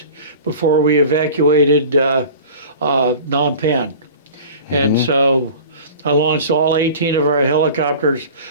before we evacuated Phnom Penh. And so I launched all 18 of our helicopters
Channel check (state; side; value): inverted; both; correlation -0.39